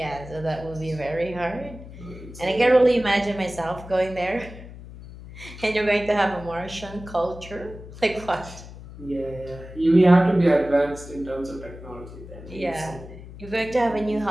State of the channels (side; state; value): left; noise; hum, 15 dB below the sound